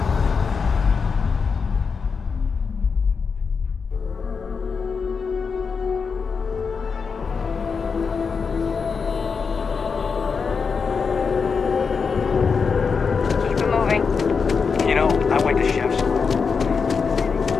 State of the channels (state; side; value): quieter; right; 5.4 dB